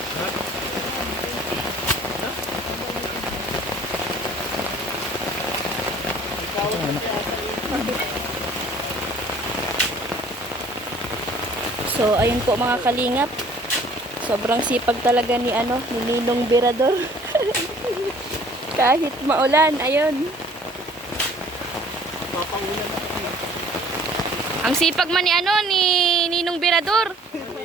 So, ayun po mga kalingap. Sobrang sipag talaga ni Ninong Birador. Kahit maulan, ayun. Ang sipag man ni Ninong Birador.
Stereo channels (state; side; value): normal; both; correlation 0.54